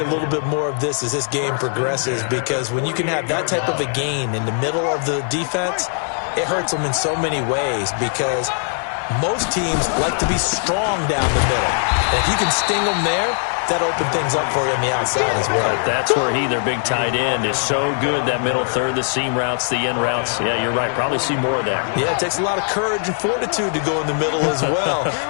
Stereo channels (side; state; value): right; silent; 62 dB below the other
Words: little bit more of this as this game progresses, because when you can have that type of a gain in the middle of the defense, it hurts them in so many ways, because most teams like to be strong down the middle. And if you can sting them there, that opened things up for you on the outside as well. But that's where their big tight end, is so good, that middle third, the seam routes, the in routes. Yeah, you're right. Probably see more of that. Yeah, it takes a lot of courage and fortitude to go in the middle as well,